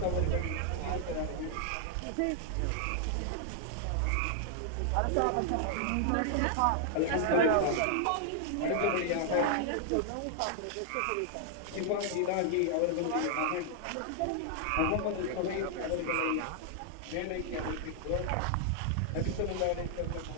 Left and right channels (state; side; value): different; both; correlation -0.01